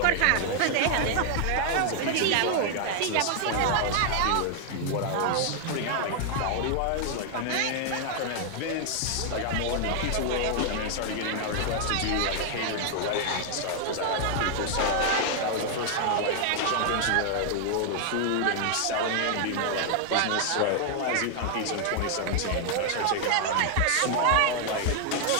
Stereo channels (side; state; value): both; different; correlation 0.00